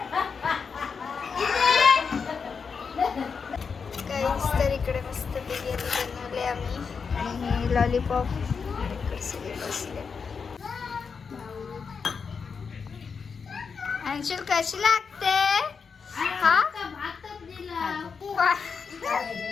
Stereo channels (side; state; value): right; quieter; 5.7 dB